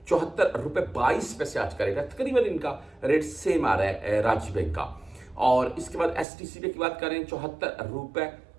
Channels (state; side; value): drops out; left; at 6.2 s